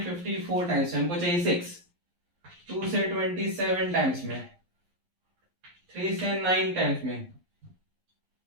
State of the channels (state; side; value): late; left; 11 ms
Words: 54 टाइम्स में, हमको चाहिए 6, 2 से 27 टाइम्स में, 3 से 9 टाइम्स में।